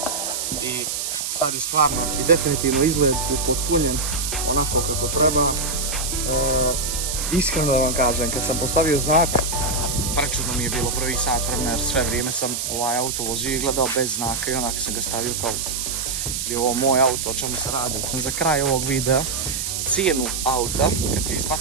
i sad je stvarno i definitivno izgled upotpunjen onako kako treba. Iskreno da vam kažem, kad sam postavio znak, prečudno mi je bilo prvi sat vremena jer sve vrijeme sam ovaj auto vozio i gledao bez znaka i onak sam ga stavio kao je ovo moj auto, o čemu se radi. Za kraj ovog videa, cijenu auta, kad ti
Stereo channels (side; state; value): right; noise; hiss, 2 dB below the sound